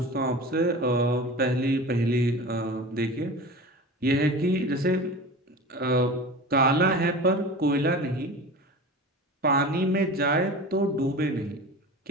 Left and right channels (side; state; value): both; normal; correlation 0.34